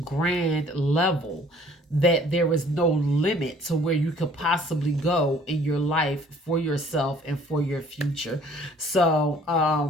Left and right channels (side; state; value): both; normal; correlation 0.55